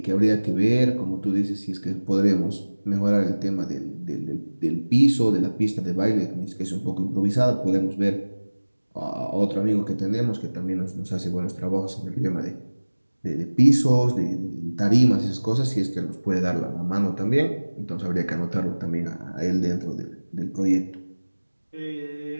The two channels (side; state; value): both; inverted; correlation -1.00